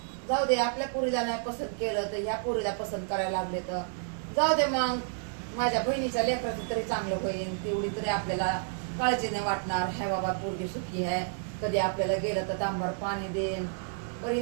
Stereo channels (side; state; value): left; silent; digital silence